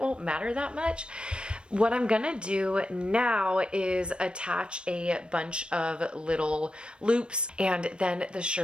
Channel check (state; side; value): late; left; 0.056 ms